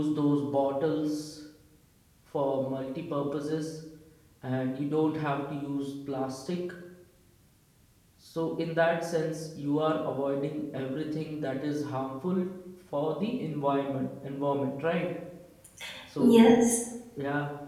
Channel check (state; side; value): identical; both; correlation 1.00